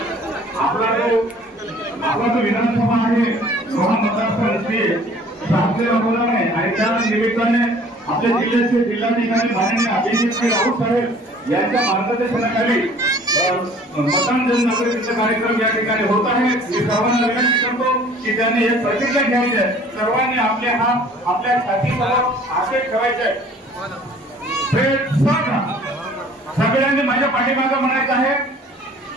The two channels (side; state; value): both; normal; correlation 0.52